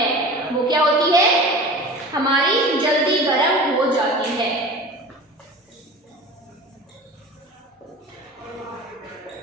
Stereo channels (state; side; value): normal; both; correlation 0.36